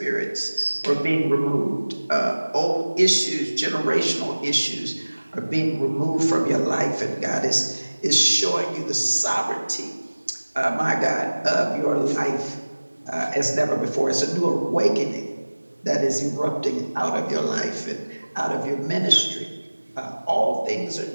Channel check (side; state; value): both; inverted; correlation -1.00